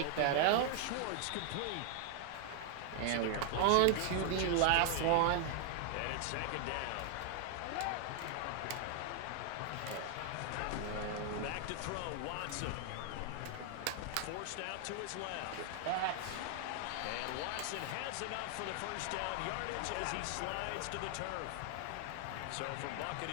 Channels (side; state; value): both; different; correlation 0.00